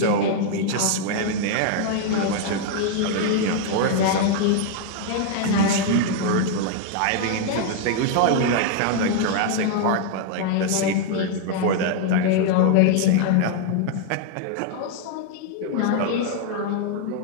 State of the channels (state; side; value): different; both; correlation 0.00